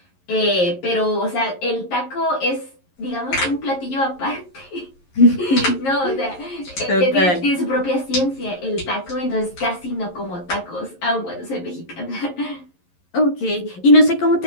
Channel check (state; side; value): late; right; 11 ms